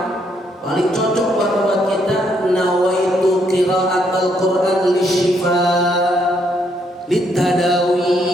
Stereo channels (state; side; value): normal; both; correlation 0.73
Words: paling cocok banget buat kita. Nawaitu qiraatul Quran lisyifa litadawi.